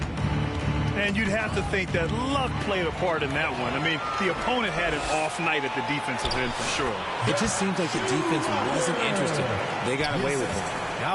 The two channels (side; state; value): both; identical; correlation 1.00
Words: And you'd have to think that luck played a part in that one. I mean, the opponent had an off night at the defensive end for sure. It just seems like the defense wasn't interested. They got away with it.